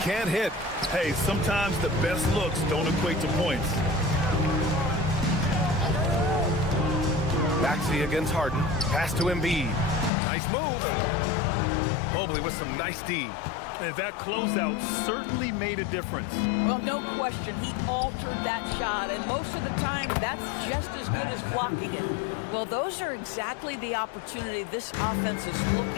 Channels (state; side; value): drops out; right; at 10.1 s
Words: can't hit. Hey, sometimes the best looks don't equate to points. Maxey against Harden. Pass to Embiid. Nice move. Mobley with some nice D. And that closeout certainly made a difference. Well, no question. He altered that shot, and most of the time, that's just as good as blocking it. Well, those are exactly the opportunity this offense is